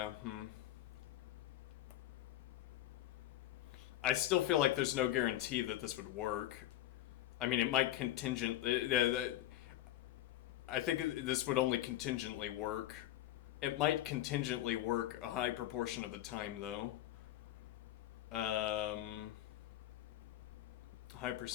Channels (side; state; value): right; quieter; 13.8 dB